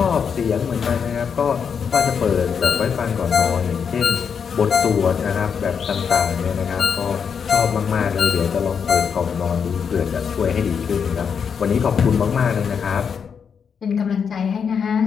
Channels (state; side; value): quieter; right; 6.7 dB